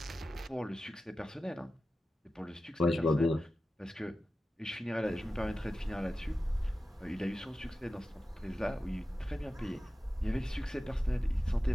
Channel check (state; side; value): normal; both; correlation 0.93